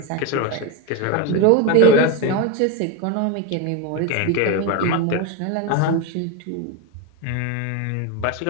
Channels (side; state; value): both; different; correlation 0.04